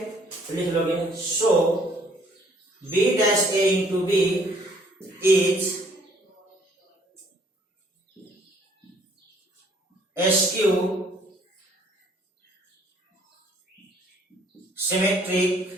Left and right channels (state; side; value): normal; both; correlation 0.61